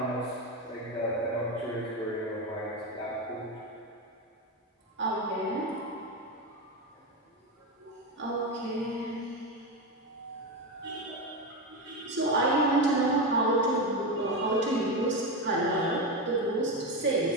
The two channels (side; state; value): both; normal; correlation 0.14